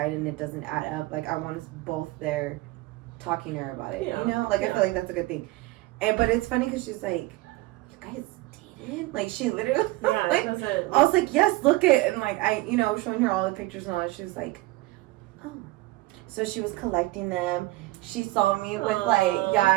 and it doesn't add up. Like, I want us both there talking to her about it. You know, like I feel like that's a good thing. But it's funny because she's like, you guys dated? Like, she literally, like, I was like, yes, look it. And like, you know, showing her all the pictures and all that. She was like, oh. So she was collecting them. She saw me with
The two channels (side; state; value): left; quieter; 19.9 dB